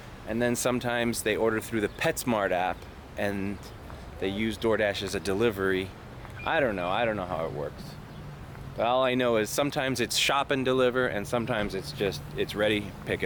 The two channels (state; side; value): identical; both; correlation 1.00